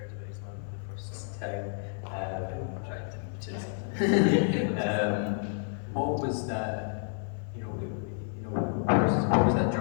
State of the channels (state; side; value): silent; right; 58 dB below the other